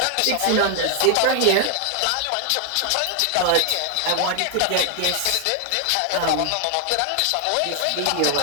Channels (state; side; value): different; both; correlation 0.00